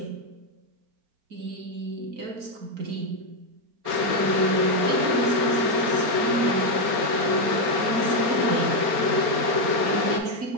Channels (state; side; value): late; left; 4.3 ms